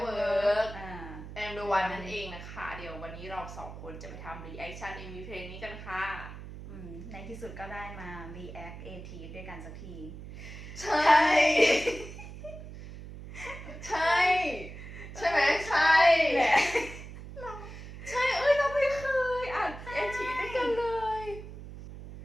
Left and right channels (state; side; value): noise; right; hum, 12 dB below the sound